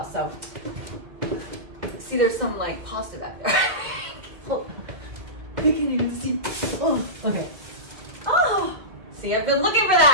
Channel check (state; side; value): late; left; 2.3 ms